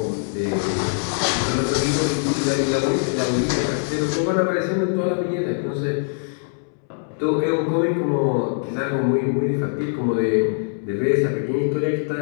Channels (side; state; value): right; silent; 64 dB below the other